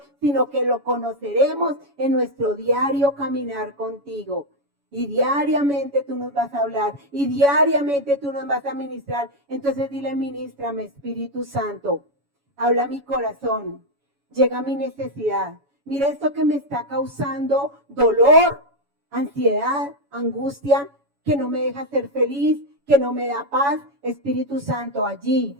sino que lo conoceremos en nuestro diario caminar contigo. Y diariamente tú nos vas a hablar, y diariamente tú nos vas a ministrar. Entonces dile, ministrame, Espíritu Santo, habla a mi corazón, llega a mi necesidad. Mira esto que me está causando dolor, ansiedad, angustia, que no me deja ser feliz, que no me da paz. Espíritu Santo, allí,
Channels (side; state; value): left; late; 7.1 ms